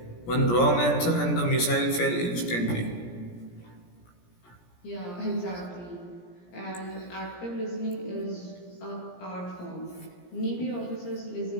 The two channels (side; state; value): right; late; 17 ms